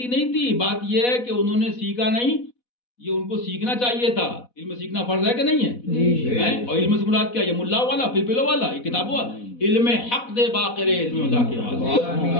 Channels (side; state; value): right; late; 4.1 ms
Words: نہیں تھی، بات یہ ہے کہ انہوں نے سیکھا نہیں، یہ ان کو سیکھنا چاہیے تھا، علم سیکھنا فرض ہے کہ نہیں ہے؟ اور علم سے مراد کیا؟ یہ ملا والا پلپلو والا، یہ کتاب ہوا علم حق دے باقر علم اللہ کے،